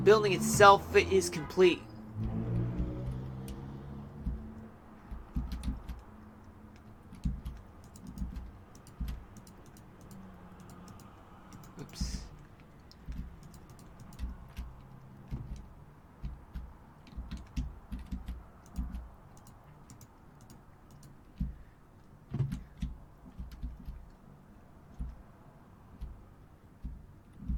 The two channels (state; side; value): identical; both; correlation 1.00